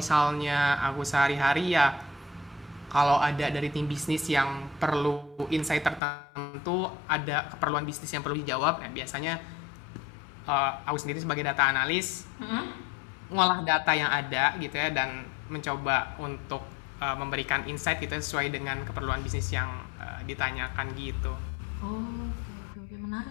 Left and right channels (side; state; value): right; drops out; at 6.0 s